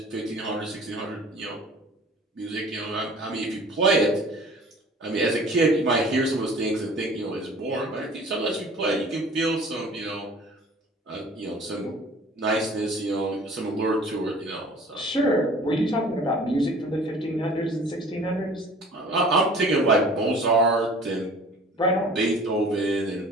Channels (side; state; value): both; normal; correlation 0.47